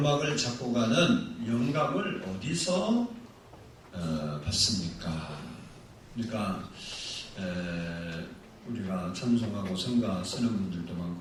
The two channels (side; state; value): both; identical; correlation 1.00